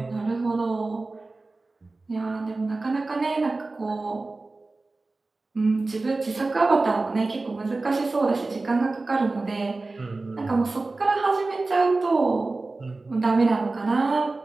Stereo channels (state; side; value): quieter; left; 3.4 dB